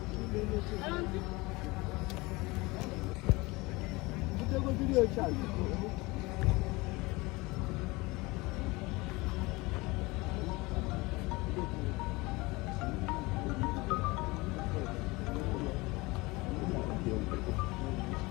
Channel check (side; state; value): right; quieter; 23.2 dB